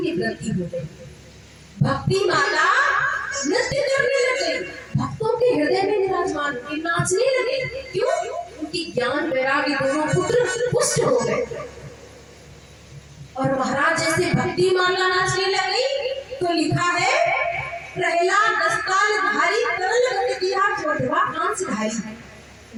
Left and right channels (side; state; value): both; identical; correlation 1.00